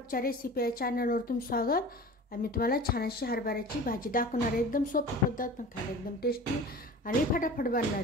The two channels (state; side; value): normal; both; correlation 0.38